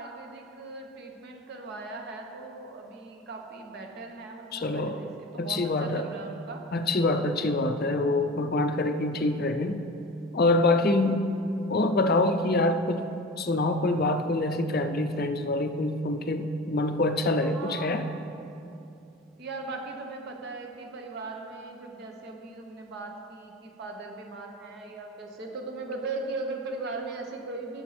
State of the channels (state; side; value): normal; both; correlation 0.33